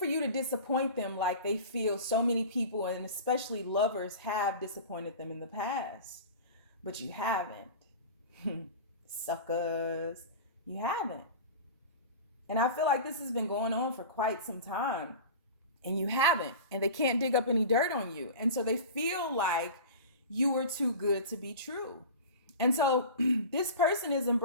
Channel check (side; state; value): both; inverted; correlation -0.34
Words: you to disappoint them like they feel so many people, and especially lovers, have disappointed them in the past. But you haven't. Suckers. You haven't. And I feel like this has been going on for quite some time. And you haven't. And they can't dig up any dirt on you. And so they feel like you were too good to be true. And so this person is